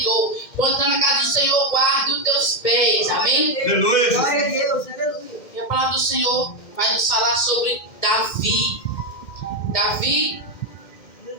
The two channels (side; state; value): right; late; 2.1 ms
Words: Quando está na casa do Senhor, guarde os teus pés. Amém? Aleluia. Glória a Deus, aleluia. E a palavra do Senhor vai nos falar sobre Davi. Davi,